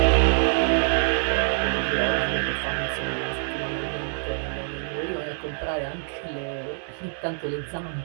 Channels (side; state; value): left; silent; 58 dB below the other